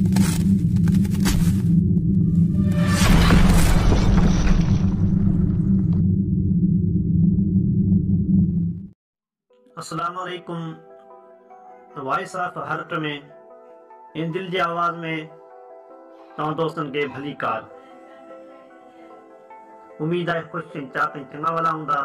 वालेकुम। Voice of heart में इन दिल जी आवाज़ में तव्हां दोस्तन के भली कार। उम्मीद है खुश चिंता चंगा वाला हूंदा।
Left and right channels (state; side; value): identical; both; correlation 1.00